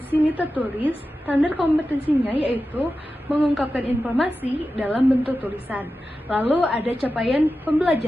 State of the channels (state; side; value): normal; both; correlation 0.93